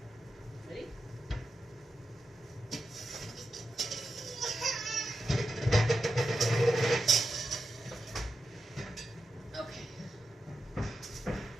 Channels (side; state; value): both; normal; correlation 0.88